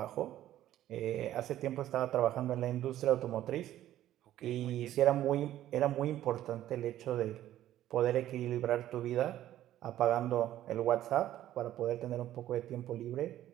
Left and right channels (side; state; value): left; quieter; 13.0 dB